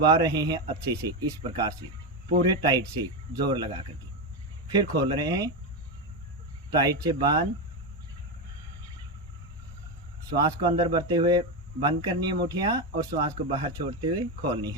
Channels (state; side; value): normal; both; correlation 0.11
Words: रहे हैं अच्छे से, इस प्रकार से पूरे टाइट से जोर लगा करके। फिर खोल रहे हैं, टाइट से बांध, श्वास को अंदर भरते हुए बंद करनी है मुठियां और श्वास को बाहर छोड़ते हुए खोलनी